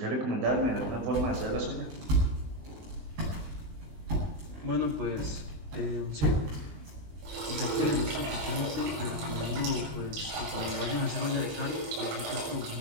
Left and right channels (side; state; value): left; late; 19 ms